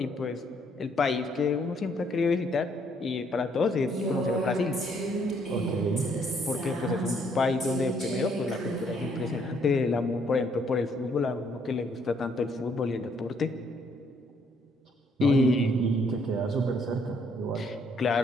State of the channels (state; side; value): normal; both; correlation 0.68